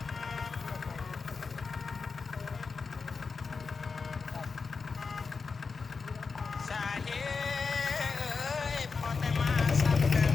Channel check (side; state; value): right; quieter; 4.9 dB